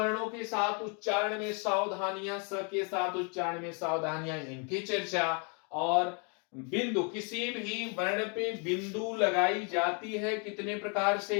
के साथ उच्चारण में सावधानियां, स के साथ उच्चारण में सावधानियां, इनकी चर्चा। और बिंदु, किसी भी वर्ण पे बिंदु लगाई जाती है कितने प्रकार से,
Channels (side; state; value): right; quieter; 37.0 dB